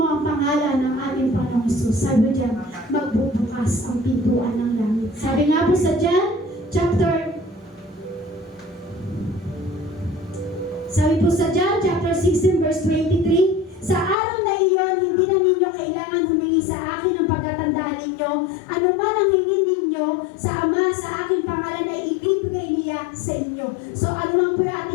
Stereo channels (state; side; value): drops out; right; at 14.2 s